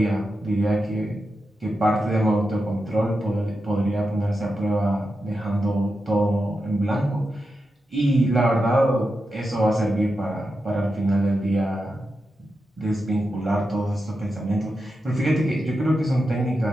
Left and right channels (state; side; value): normal; both; correlation 0.89